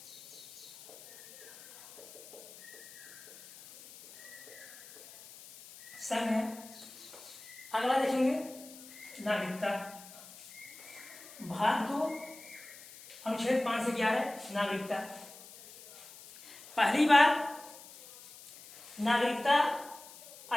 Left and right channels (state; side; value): noise; left; hiss, 17 dB below the sound